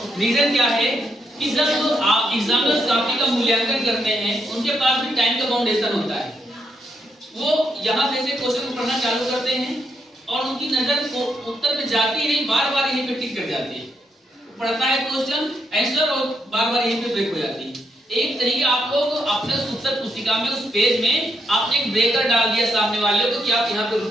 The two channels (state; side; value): normal; both; correlation 0.79